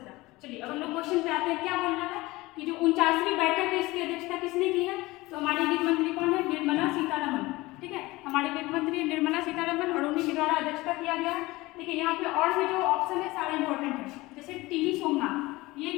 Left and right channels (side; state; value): right; quieter; 20.5 dB